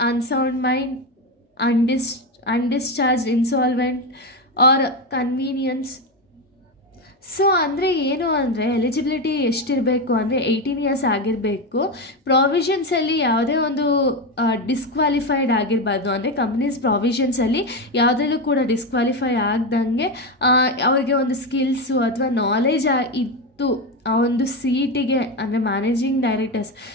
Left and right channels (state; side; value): normal; both; correlation 0.13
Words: unsound mind, undischarge, insolvent or convenience. So ಅಂದರೆ ಏನು ಅಂದರೆ eligibility ಎಷ್ಟಿರಬೇಕು ಅಂದರೆ 18 years ಆಗಿರಬೇಕು. ಪ್ರಾವಿಷನ್ಸಲ್ಲಿ ಯಾವುದೇ ಒಂದು ಡಿಸ್ಕ್ವಾಲಿಫೈಡ್ ಆಗಿರಬಾರ್ದು, ಅಂದರೆ ಕಂಪ್ನೀಸ್ ಪ್ರಾವಿಷನ್ಸಲ್ಲಿ ಯಾವುದರಲ್ಲೂ ಕೂಡ ಡಿಸ್ಕ್ವಾಲಿಫೈ ಆಗ್ದಂಗೆ ಅವ್ರಿಗೆ ಒಂದು ಸ್ಕಿಲ್ಸು ಅಥವಾ ನಾಲೆಜ್ ಇತ್ತು ಆ ಒಂದು ಸೀಟಿಗೆ, ಅಂದರೆ ಮ್ಯಾನೇಜಿಂಗ್